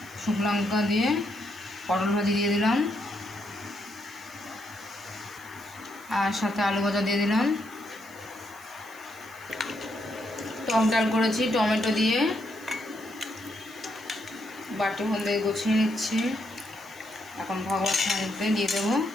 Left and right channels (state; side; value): noise; right; hiss, 21 dB below the sound